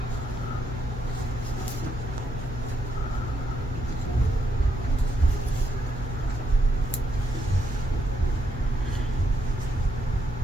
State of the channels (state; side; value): normal; both; correlation 0.77